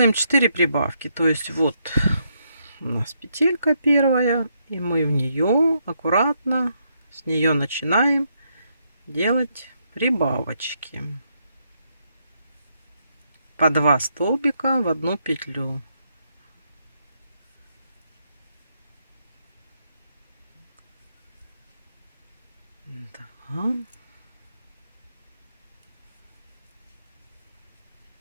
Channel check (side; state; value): both; inverted; correlation -0.77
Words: 4 прибавки. То есть вот у нас петелька первая, и мы в нее аккуратно с нее начинаем делать прибавочки. По 2 столбика в одну петлю. 2.